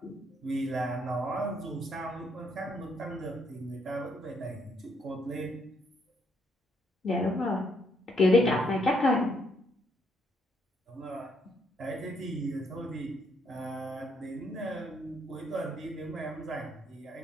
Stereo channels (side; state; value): both; normal; correlation 0.72